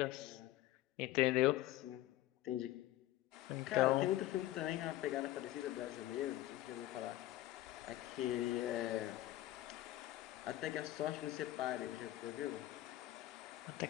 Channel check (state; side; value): quieter; right; 15.2 dB